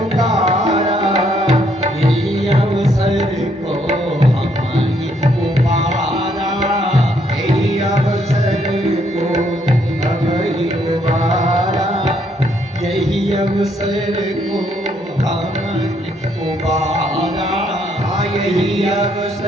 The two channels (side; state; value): both; normal; correlation 0.71